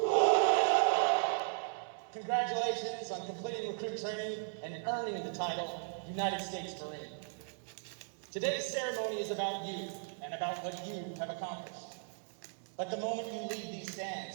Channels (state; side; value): silent; left; digital silence